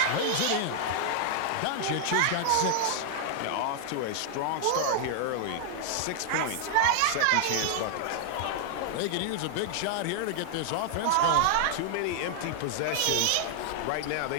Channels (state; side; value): different; both; correlation 0.00